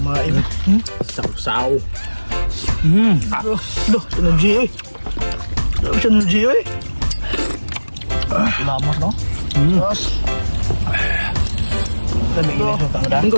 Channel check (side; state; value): both; inverted; correlation -1.00